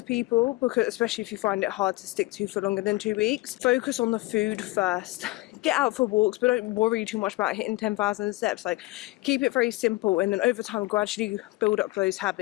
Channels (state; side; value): quieter; right; 21.0 dB